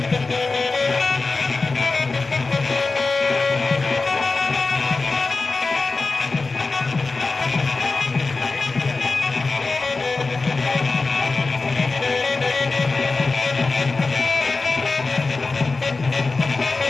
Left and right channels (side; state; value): right; quieter; 3.8 dB